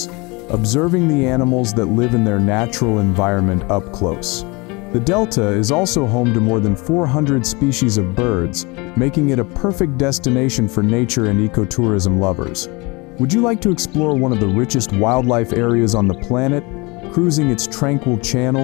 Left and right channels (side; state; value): right; quieter; 26.5 dB